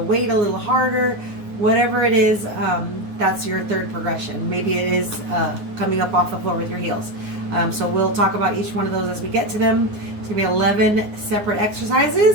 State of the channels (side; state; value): left; late; 9.6 ms